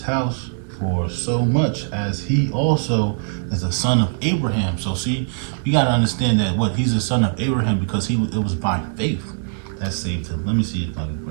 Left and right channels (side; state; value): left; silent; digital silence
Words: house, for so much as he also is the son of Abraham. So see, we got to understand that he's the son of Abraham because it was by faith that saved him. Let me see if I can